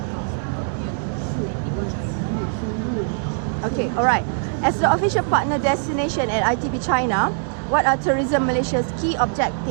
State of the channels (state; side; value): silent; left; 64 dB below the other